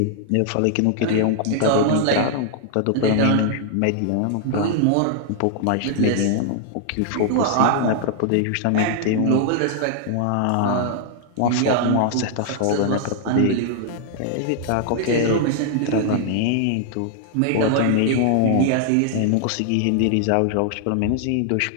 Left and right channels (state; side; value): different; both; correlation 0.00